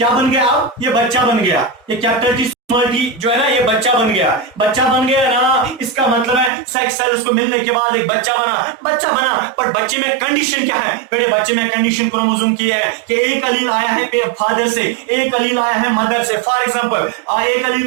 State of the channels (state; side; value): drops out; left; at 6.5 s